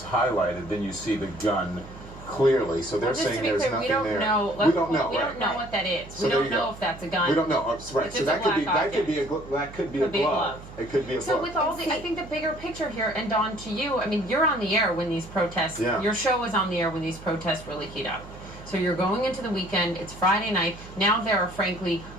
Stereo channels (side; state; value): right; noise; hum, 16 dB below the sound